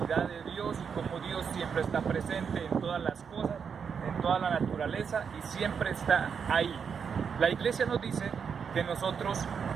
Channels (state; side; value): quieter; left; 6.6 dB